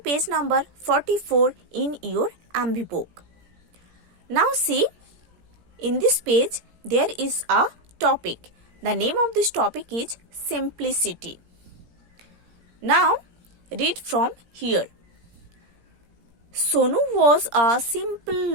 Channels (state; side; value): late; left; 17 ms